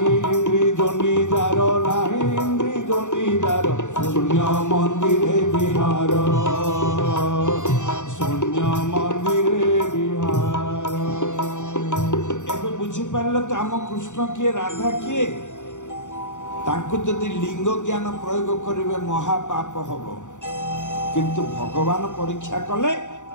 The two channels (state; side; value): late; right; 0.85 ms